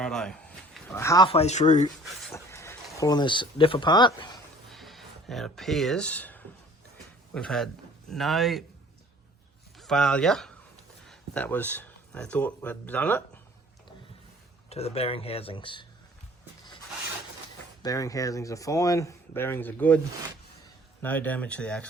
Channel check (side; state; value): both; normal; correlation 0.52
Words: halfway through pulling this diff apart, and it appears we've had no failure. That was, they thought we'd done it, to the bearing housings. Bearing housings are fine, bearings are good, no damage to the